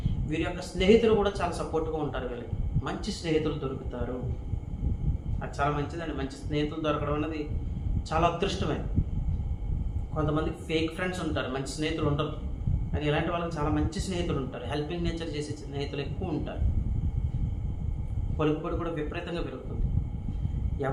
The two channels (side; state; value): both; identical; correlation 1.00